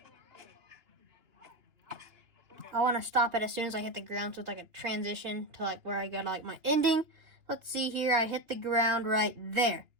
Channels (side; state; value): left; late; 2.9 ms